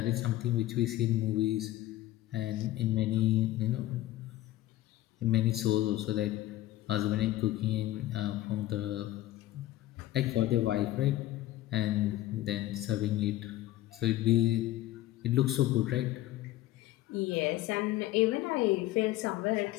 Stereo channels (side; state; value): right; quieter; 15.2 dB